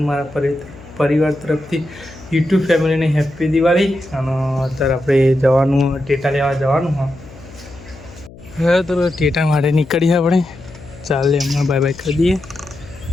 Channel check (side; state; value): left; noise; hum, 19 dB below the sound